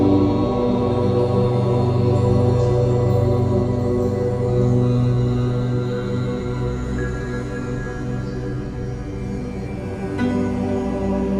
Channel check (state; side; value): identical; both; correlation 1.00